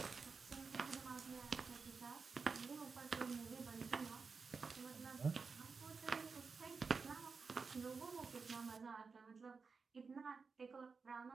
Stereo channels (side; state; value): left; quieter; 4.9 dB